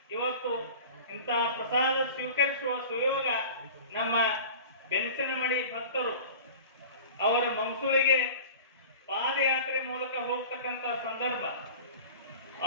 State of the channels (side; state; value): both; inverted; correlation -0.38